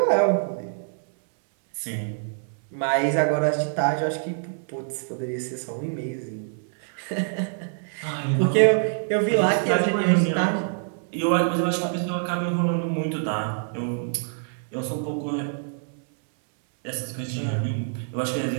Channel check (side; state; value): left; silent; 61 dB below the other